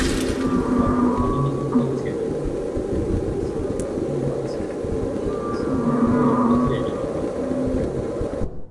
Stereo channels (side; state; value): both; identical; correlation 1.00